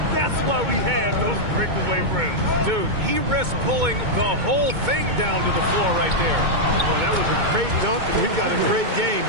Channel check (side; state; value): left; late; 2.2 ms